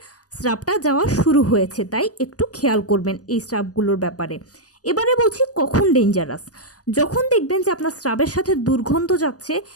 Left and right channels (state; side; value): late; right; 0.67 ms